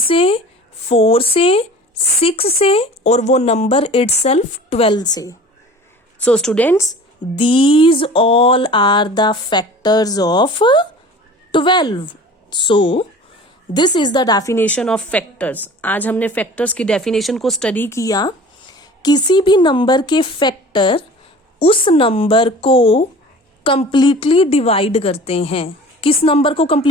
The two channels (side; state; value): both; normal; correlation 0.43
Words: 4 से, 6 से, और वो नंबर इटसेल्फ 12 से। So students, these all are the factors of 12. So this is the definition of factors. आज हमने factors की definition को study किया। किसी भी नंबर के फैक्टर उस नंबर को कंप्लीटली डिवाइड करते हैं। किस नंबर को